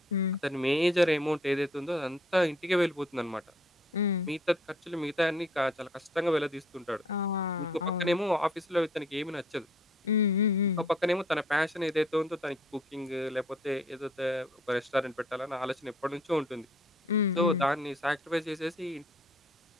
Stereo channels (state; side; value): normal; both; correlation 0.60